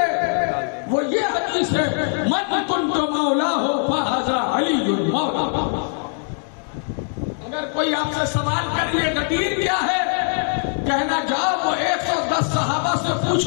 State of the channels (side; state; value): right; silent; 55 dB below the other